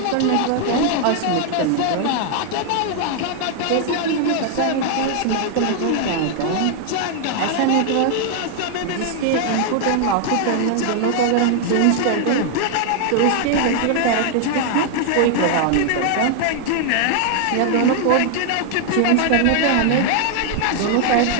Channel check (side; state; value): both; different; correlation 0.00